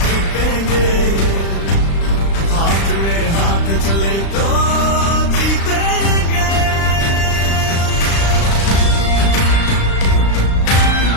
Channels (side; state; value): right; late; 36 ms